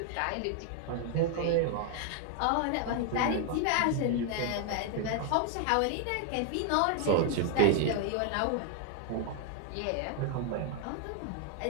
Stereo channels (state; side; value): different; both; correlation 0.00